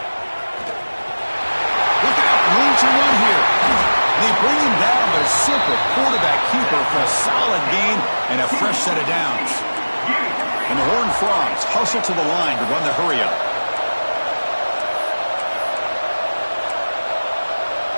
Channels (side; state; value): both; inverted; correlation -1.00